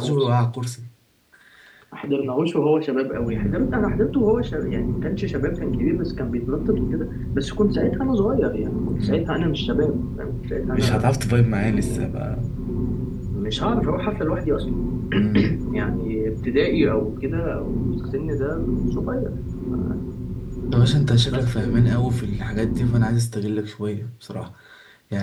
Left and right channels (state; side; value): identical; both; correlation 1.00